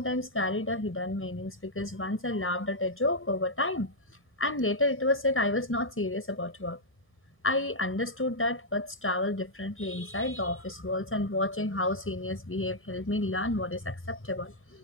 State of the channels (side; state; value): both; normal; correlation -0.06